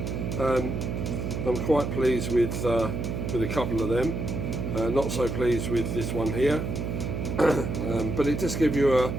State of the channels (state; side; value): noise; right; hum, 3 dB below the sound